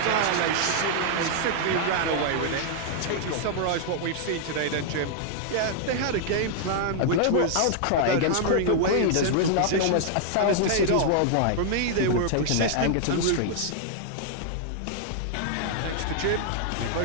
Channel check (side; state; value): both; different; correlation -0.01